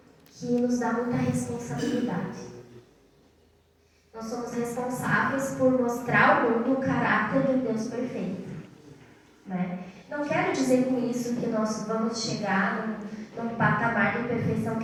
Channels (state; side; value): identical; both; correlation 1.00